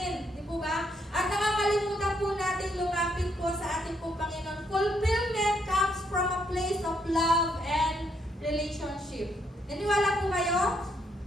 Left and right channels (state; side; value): normal; both; correlation 0.74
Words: di po ba? At nakakalimutan po natin lumapit po sa ating pong Panginoon. Fulfillment comes from a place of love and relationship. Naniwala po kayo?